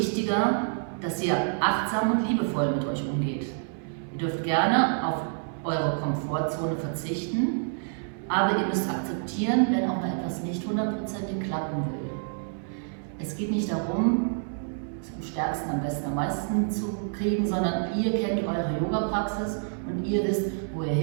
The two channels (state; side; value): silent; left; 59 dB below the other